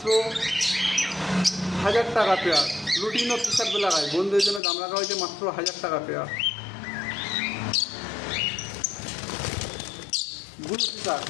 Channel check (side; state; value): right; drops out; at 4.6 s